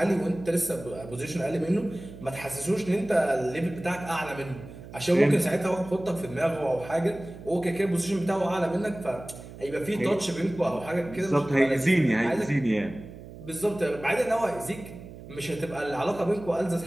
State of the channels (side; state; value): right; noise; hum, 15 dB below the sound